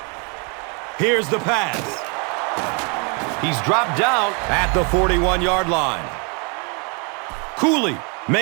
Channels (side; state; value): left; quieter; 34.4 dB